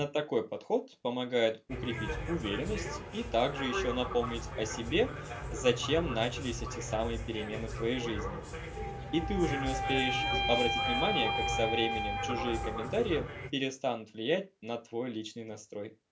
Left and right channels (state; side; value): identical; both; correlation 1.00